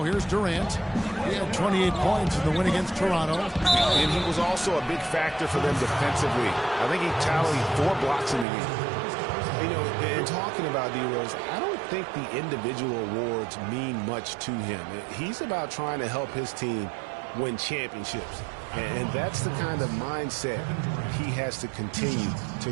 here's Durant. He had 28 points in the win against Toronto. And he was also a big factor for them defensively. I think he tallied 4 blocks in the game. You know, and talking about D-Rose, I don't think the individual awards mean much to him. He's about trying to help his team win championships. And that's the kind of mindset he has to continue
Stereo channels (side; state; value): left; drops out; at 8.5 s